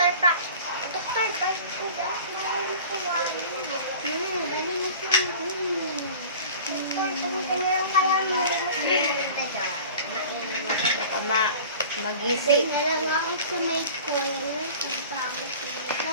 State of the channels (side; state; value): both; inverted; correlation -0.41